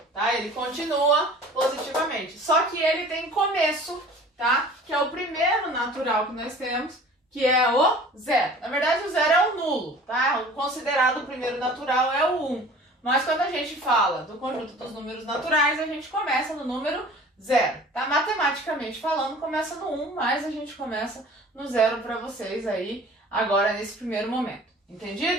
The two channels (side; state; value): both; normal; correlation 0.45